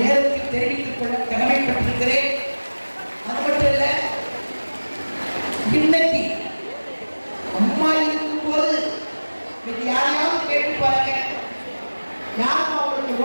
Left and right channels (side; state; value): both; inverted; correlation -1.00